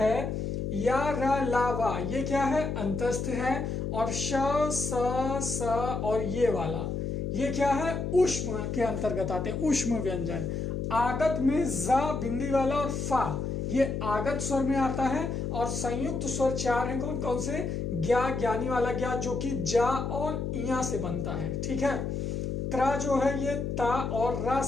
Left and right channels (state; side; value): noise; left; hum, 2 dB below the sound